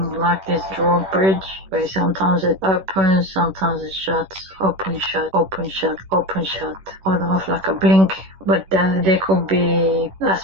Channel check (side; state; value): left; late; 11 ms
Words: like this drawbridge, where sometimes it opens, sometimes it shuts, open, shut, open, shut, open, shut, on off like a blink But there could be